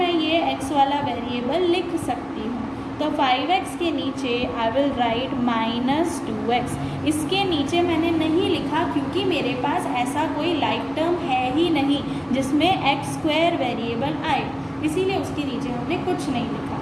ये x वाला वेरिएबल लिख सकती हूँ. तो 5x के नीचे आई विल राइट -2x. इसके नीचे मैंने नहीं लिखा क्योंकि मेरे पास ऐसा कोई लाइक टर्म है ही नहीं जिसमें x² वेरिएबल आए, इसीलिए उसके नीचे हमने कुछ नहीं लिखा.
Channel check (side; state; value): both; identical; correlation 1.00